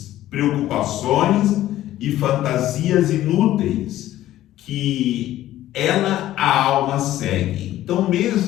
preocupações e fantasias inúteis que a alma segue. Então,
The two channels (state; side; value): quieter; right; 13.9 dB